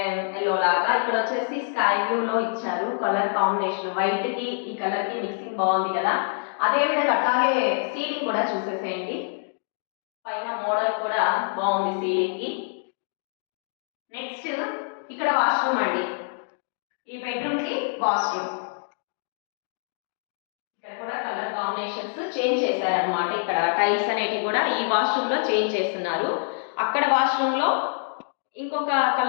ఎల్లో లాగా. ఇక్కడ వచ్చేసి స్కై బ్లూ లో ఇచ్చారు కలర్ కాంబినేషన్. వైట్ కి ఈ కలర్ కి మిక్సింగ్ బాగుంది కదా. అదే విధంగా అట్లాగే సీలింగ్ కూడా చూసేసేయండి. పైన మోడల్ కూడా బాగుంది సీలింగ్ కి. నెక్స్ట్ ఇక్కడ వాష్రూమ్ అండి. ఈ బెడ్రూమ్ కి వాష్రూమ్. ఇక్కడ కూడా కలర్ కాంబినేషన్స్ చేంజ్ చేశారనమాట. ఇక్కడ టైల్స్ అనేటివి కూడా ఈ వాష్రూమ్ లో చేంజ్ చేస్తున్నారు. అక్కడ వాష్రూమ్ లో ఇంకొక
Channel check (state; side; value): silent; right; digital silence